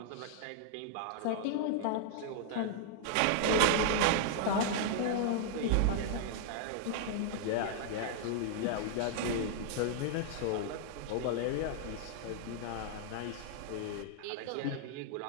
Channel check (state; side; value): different; both; correlation -0.01